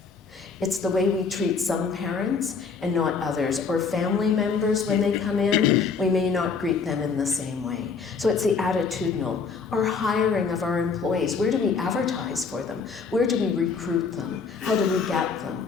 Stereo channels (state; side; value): quieter; right; 5.2 dB